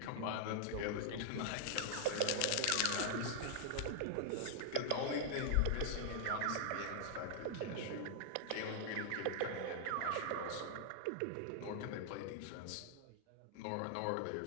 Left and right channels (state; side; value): different; both; correlation 0.00